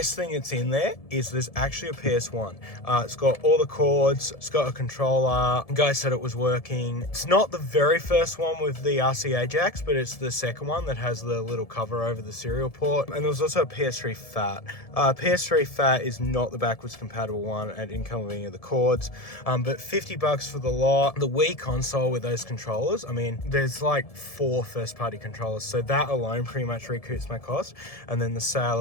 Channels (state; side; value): late; right; 1.7 ms